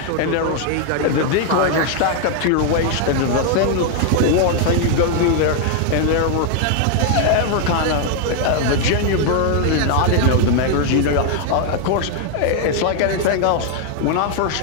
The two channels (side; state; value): both; different; correlation 0.00